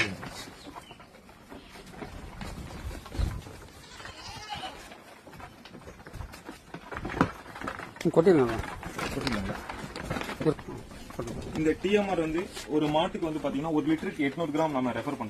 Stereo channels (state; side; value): identical; both; correlation 1.00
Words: கொட்டிடலாம். இந்த டிஎம்ஆர் வந்து ஒரு மாட்டுக்கு வந்து பாத்தீங்கன்னா 1 லிட்டருக்கு 800 கிராம் நம்ம ரெஃபர்